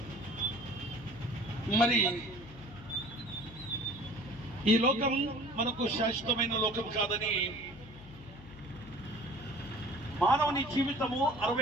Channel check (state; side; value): noise; left; hum, 18 dB below the sound